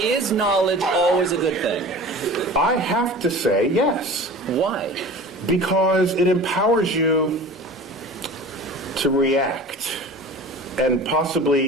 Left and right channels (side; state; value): both; normal; correlation 0.38